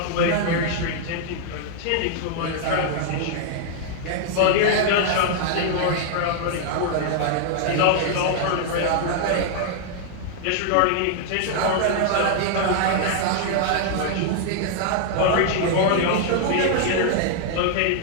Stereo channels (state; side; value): different; both; correlation 0.00